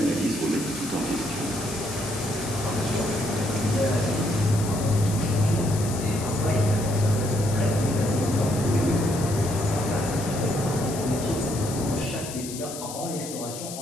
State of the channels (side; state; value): left; noise; hiss, 10 dB below the sound